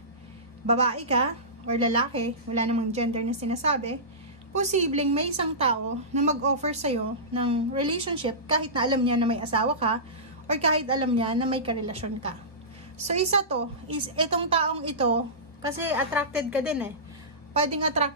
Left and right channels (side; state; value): both; normal; correlation -0.20